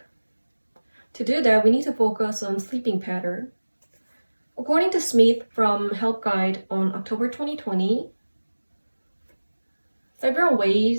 To do that, we need to focus on sleeping pattern. According to Smith from Help Guide on October 2020, several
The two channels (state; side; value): inverted; both; correlation -1.00